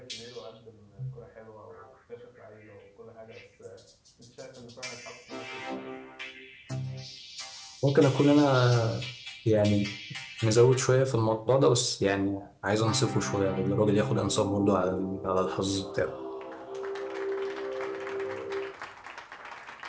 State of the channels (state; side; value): identical; both; correlation 1.00